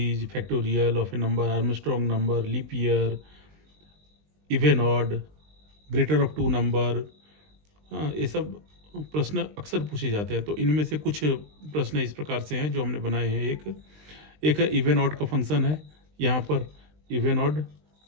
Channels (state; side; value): late; left; 20 ms